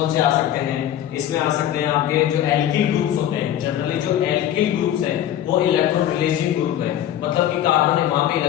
से आ सकते हैं? इसमें आ सकते हैं आपके जो एल्किल ग्रुप्स होते हैं। जनरली जो एल्किल ग्रुप्स हैं वो इलेक्ट्रॉन रिलीजिंग ग्रुप है, मतलब कि कार्बन वहां पे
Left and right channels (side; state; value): right; quieter; 11.5 dB